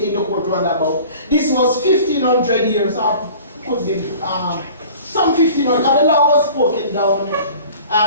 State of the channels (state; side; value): inverted; both; correlation -0.45